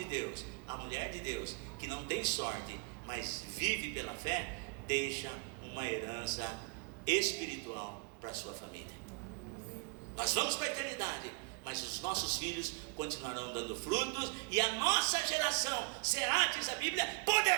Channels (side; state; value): left; quieter; 31.5 dB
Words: Deus, a mulher de Deus, que não tem sorte, mas vive pela fé, deixa uma herança espiritual para a sua família. Nós vamos para a eternidade, mas os nossos filhos continuarão dando frutos, e a nossa geração será, diz a Bíblia,